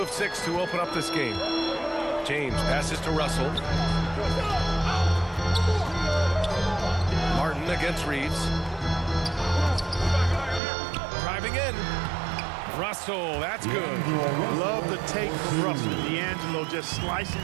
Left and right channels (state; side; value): drops out; left; at 10.6 s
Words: of 6 to open up this game. James passes to Russell. Martin against Reeves. Driving in. Russell, that's good. Love the take from Russell. D'Angelo just slicing